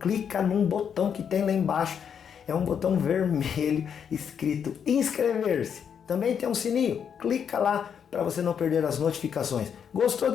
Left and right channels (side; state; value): right; quieter; 7.7 dB